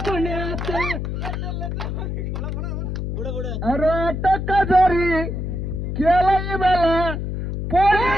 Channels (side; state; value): left; noise; hum, 3 dB below the sound